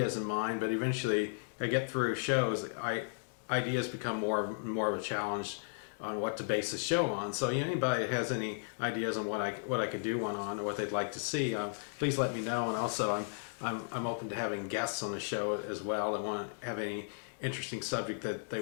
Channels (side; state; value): right; silent; digital silence